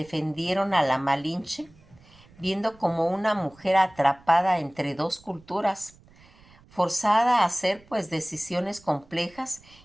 a la Malinche viendo como una mujer atrapada entre dos culturas, forzada a hacer pues decisiones complejas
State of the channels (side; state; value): right; noise; rumble, 27 dB below the sound